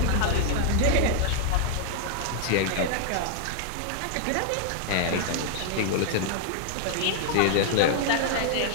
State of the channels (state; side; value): different; both; correlation 0.00